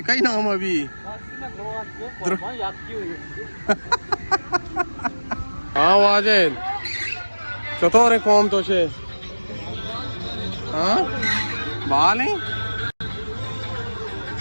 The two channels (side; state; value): both; inverted; correlation -1.00